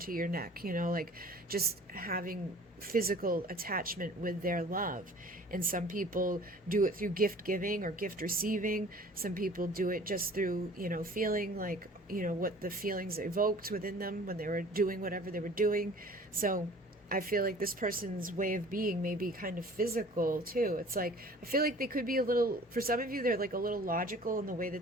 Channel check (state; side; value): normal; both; correlation 0.48